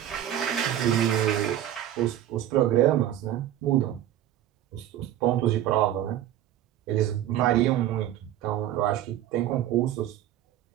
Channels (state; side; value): quieter; left; 12.1 dB